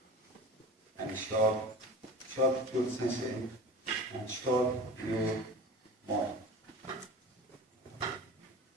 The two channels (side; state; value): both; normal; correlation 0.35